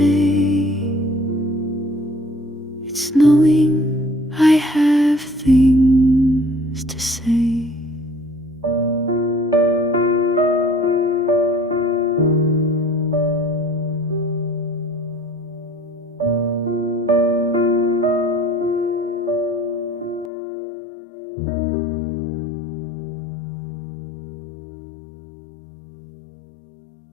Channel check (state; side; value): drops out; right; at 20.3 s